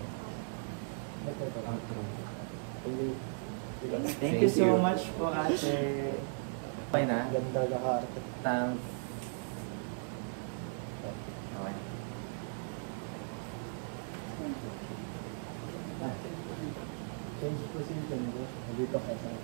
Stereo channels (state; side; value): silent; left; 53 dB below the other